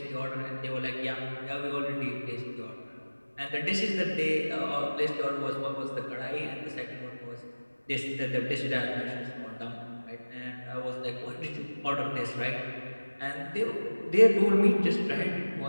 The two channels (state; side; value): inverted; both; correlation -1.00